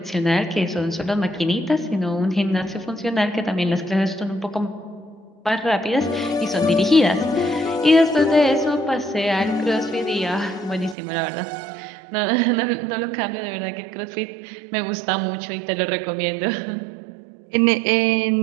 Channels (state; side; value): drops out; left; at 11.0 s